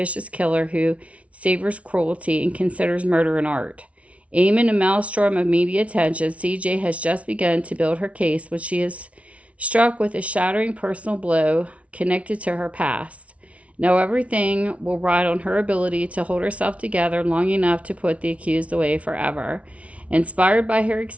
killer who savors cruelty and considers murder an art. Amid a maelstrom of media attention, C.J. has just begun to build her case when she is struck with a shattering personal blow connected to her past. Now everything will ride on her ability to hold herself together long enough to put the accused away forever. Inspired by her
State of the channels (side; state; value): left; late; 0.064 ms